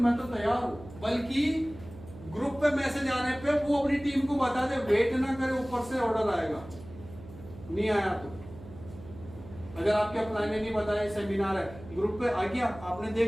तो तैयार हूं, बल्कि ग्रुप पे मैसेज आने पे वो अपनी टीम को बता दे, वेट ना करे, ऊपर से ऑर्डर आएगा। नहीं आया तो अगर आपके अपलाइन ने नहीं बताया सेमिनार है, ग्रुप पे आ गया, आपने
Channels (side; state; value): right; noise; hum, 17 dB below the sound